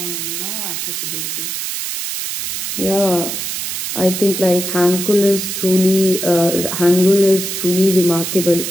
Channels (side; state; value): right; noise; hiss, 4 dB below the sound